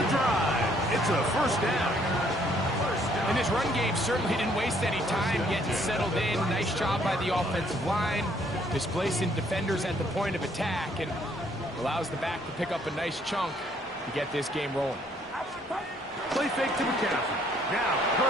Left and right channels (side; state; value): both; normal; correlation 0.66